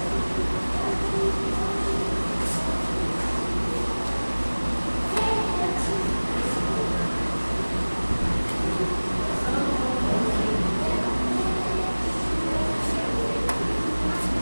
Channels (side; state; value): both; inverted; correlation -1.00